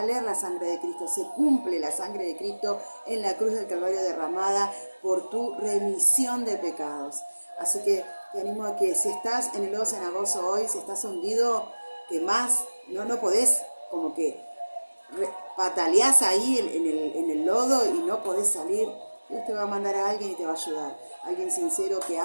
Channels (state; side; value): inverted; both; correlation -1.00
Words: la sangre de Cristo. Se cumple la sangre de Cristo en la cruz del Calvario derramada por tu remisión de pecados. Así que te animo a que si estás en el lodo cenagoso hoy, si estás hundido, que más no podés, como que pataleás ahí en el lodo y no podés salir. Dios te va a mandar a alguien y te va a ayudar. Alguien sincero que